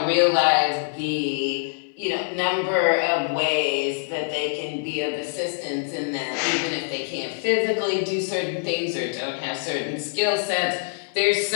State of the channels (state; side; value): silent; right; digital silence